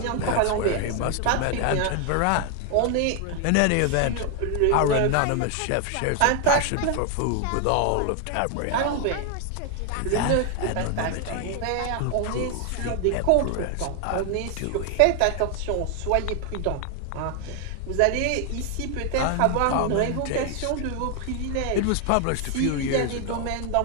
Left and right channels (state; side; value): different; both; correlation 0.00